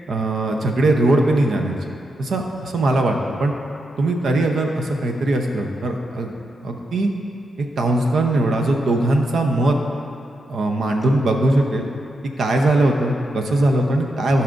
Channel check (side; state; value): both; normal; correlation 0.84